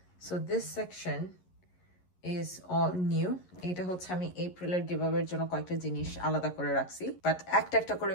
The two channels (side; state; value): right; late; 11 ms